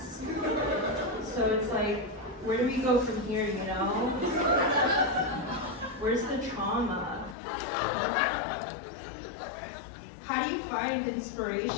So it's like, where do we go from here, you know? Where's the trauma? How do you find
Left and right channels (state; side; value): drops out; right; at 7.4 s